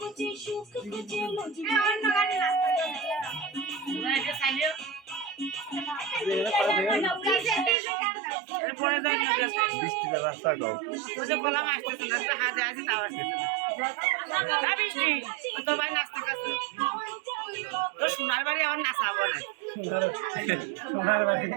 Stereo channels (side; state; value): left; drops out; at 7.8 s